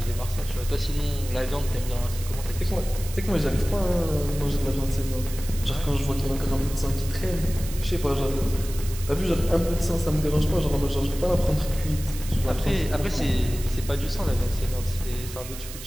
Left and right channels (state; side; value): noise; right; hiss, 13 dB below the sound